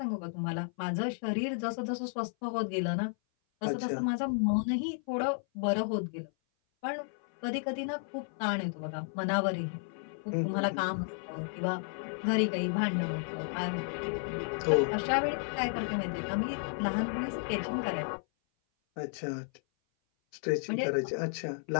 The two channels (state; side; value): silent; right; 56 dB below the other